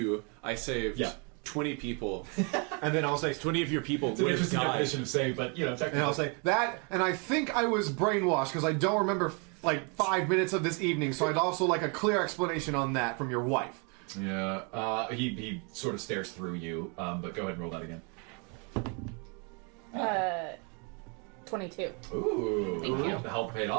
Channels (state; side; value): quieter; left; 34.9 dB